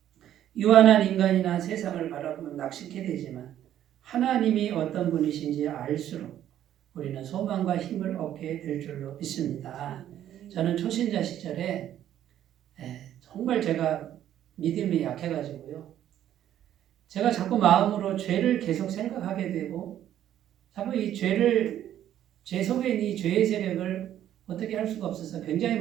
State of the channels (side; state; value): left; quieter; 11.3 dB